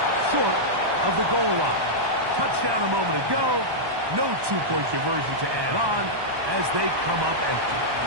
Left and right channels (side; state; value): left; late; 1.2 ms